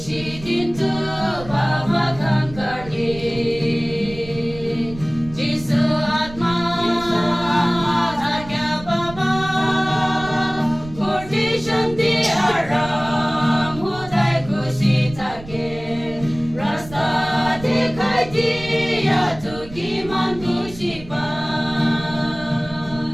babakan karni Jisu atma Agya baba Kurti shanti aram Hudai kushitake Rasta dikai diya Tukiman kushipan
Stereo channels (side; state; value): right; noise; rumble, 15 dB below the sound